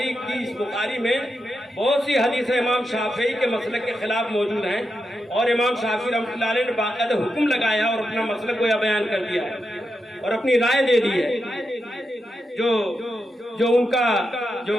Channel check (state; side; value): normal; both; correlation 0.86